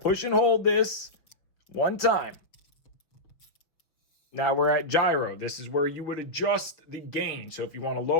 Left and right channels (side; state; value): right; late; 6.1 ms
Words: push and hold this 1 time. Now we're at gyro. This is where you would adjust the gain. So if you want to